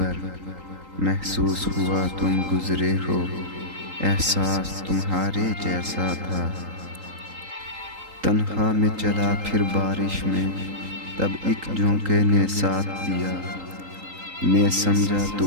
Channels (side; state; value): left; late; 3.8 ms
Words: محسوس ہوا تم گزرے ہو، احساس تمہارے جیسا تھا۔ تنہا میں چلا پھر بارش میں، تب ایک جھونکے نے ساتھ دیا، میں سمجھا